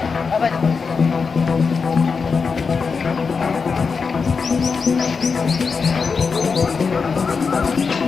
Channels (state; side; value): quieter; right; 5.2 dB